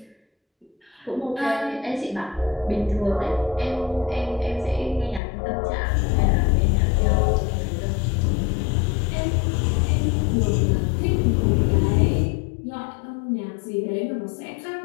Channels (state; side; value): drops out; right; at 5.2 s